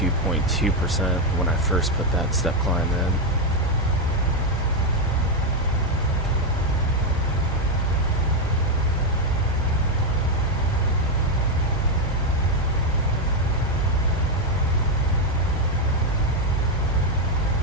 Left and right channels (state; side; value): normal; both; correlation 0.04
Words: when I first put that step climb in.